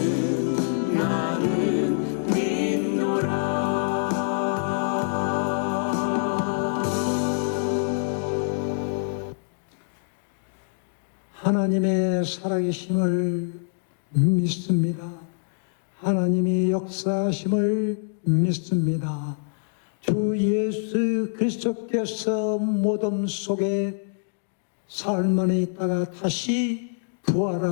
믿노라. 하나님의 살아계심을 믿습니다. 하나님이 역사하심을 믿습니다. 주 예수 그리스도께서 무덤 속에 사흘 만에 있다가 다시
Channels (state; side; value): silent; right; digital silence